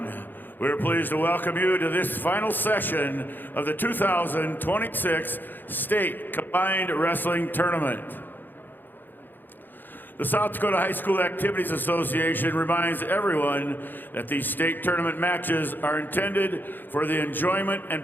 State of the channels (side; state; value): right; late; 0.091 ms